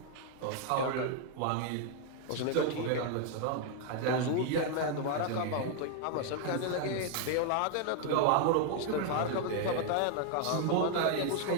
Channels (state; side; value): different; both; correlation 0.00